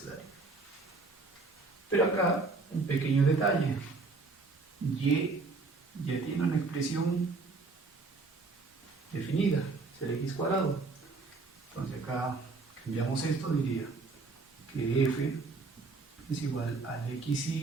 Pero acá, un pequeño detalle. Y ya tiene una expresión definida, es el x cuadrado. Entonces acá cambiamos esto, diría que f es igual al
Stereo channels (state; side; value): quieter; left; 3.8 dB